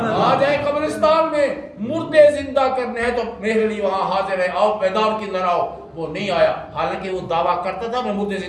آ جائے قبرستان میں مردے زندہ کرنے ہیں تو مہر علی وہاں حاضر ہے، آؤ میدان کی اندر آؤ۔ وہ نہیں آیا، حالانکہ وہ دعویٰ کرتا تھا میں مردے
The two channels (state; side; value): identical; both; correlation 1.00